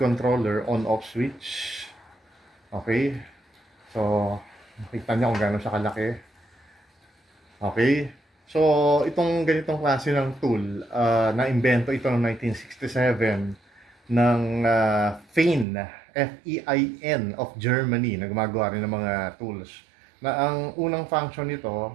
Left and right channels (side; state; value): left; drops out; at 15.7 s